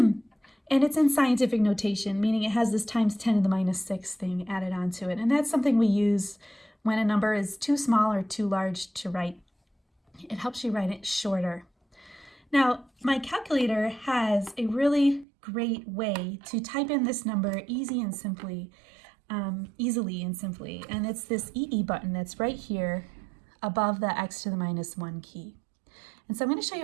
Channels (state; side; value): drops out; left; at 15.2 s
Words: it's in scientific notation, meaning it has this times 10 to the minus 6 thing added onto it. And that's something we use when a number is too small or too large to write. It helps you write it shorter. Now, my calculator has a really great way to type in this number easily and simply, and it's this EE button that's right here above the x to the minus 1 key. And so I'm going to show